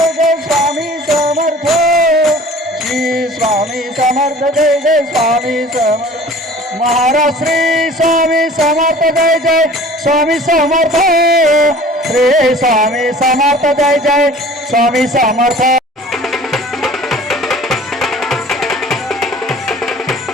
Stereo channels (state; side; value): normal; both; correlation 0.46